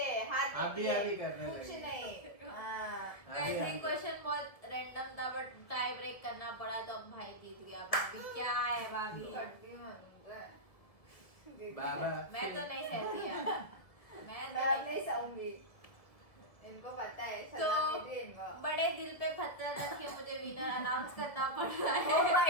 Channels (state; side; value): late; right; 1.8 ms